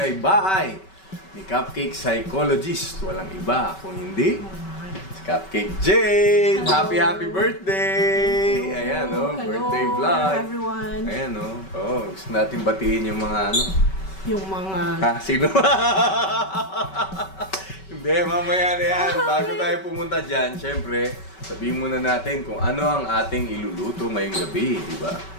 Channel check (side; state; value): right; late; 5.2 ms